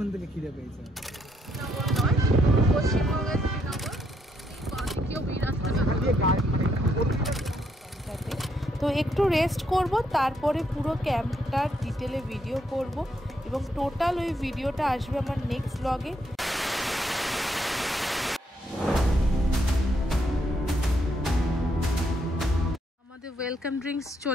থেকে খিদে পেয়েছে। শ্রীনগর নয়, পশ্চিমবঙ্গের শ্রীনগর। তো একটু রেস্ট করব, তারপরে পুরো ক্যাম্পটার ডিটেলে ভিডিও করব এবং টোটাল ওই ভিডিওটা আসবে আমার নেক্সট ব্লগে। আমাদের ওয়েলকাম ড্রিঙ্কস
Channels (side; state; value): both; normal; correlation 0.75